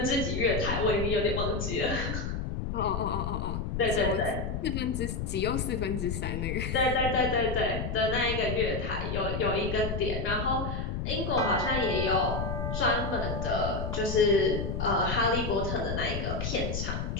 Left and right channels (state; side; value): noise; left; rumble, 3 dB below the sound